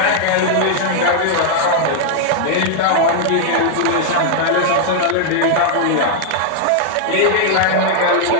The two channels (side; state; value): both; different; correlation -0.01